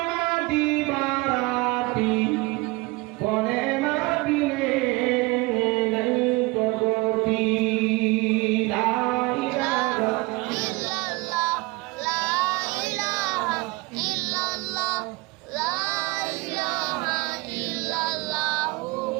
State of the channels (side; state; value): left; quieter; 24.2 dB